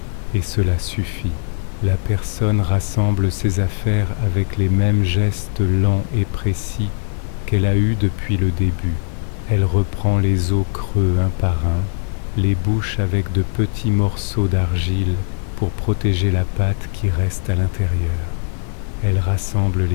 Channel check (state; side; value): silent; right; 66 dB below the other